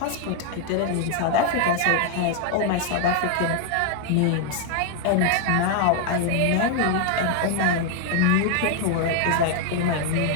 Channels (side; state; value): both; different; correlation 0.00